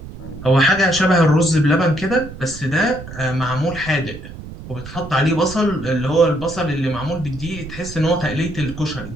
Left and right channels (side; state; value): right; noise; rumble, 13 dB below the sound